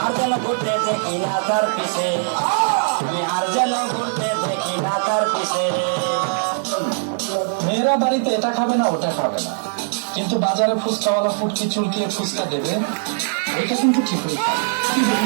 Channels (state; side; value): silent; left; digital silence